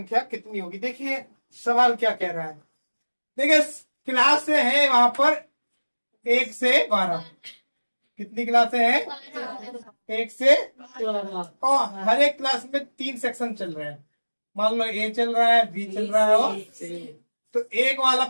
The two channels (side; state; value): both; inverted; correlation -1.00